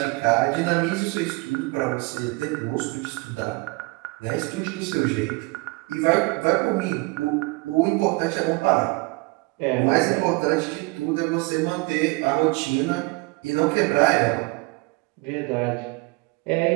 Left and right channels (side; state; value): left; quieter; 26.4 dB